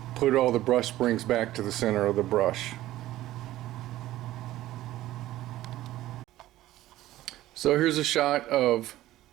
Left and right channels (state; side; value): quieter; left; 15.2 dB